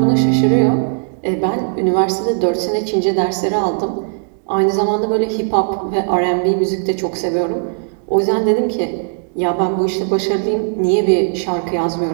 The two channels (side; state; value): left; silent; 68 dB below the other